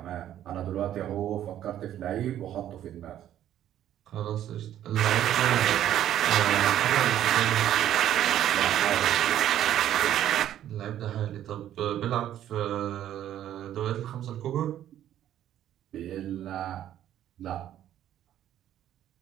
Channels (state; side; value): quieter; left; 11.5 dB